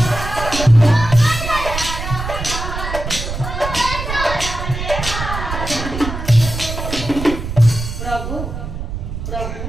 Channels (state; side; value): noise; right; rumble, 6 dB below the sound